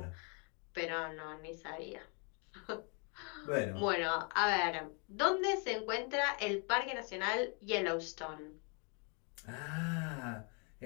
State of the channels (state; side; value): quieter; right; 36.0 dB